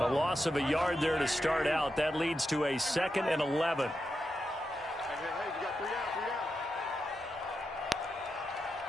loss of a yard there to start out. That leads to a 2nd and 11.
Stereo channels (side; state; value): both; normal; correlation 0.87